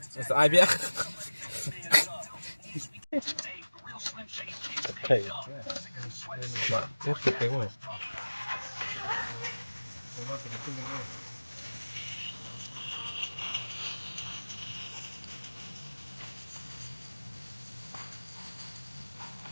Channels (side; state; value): both; inverted; correlation -1.00